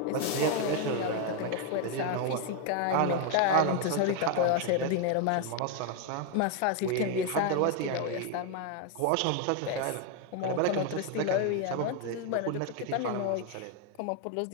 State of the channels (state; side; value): different; both; correlation 0.01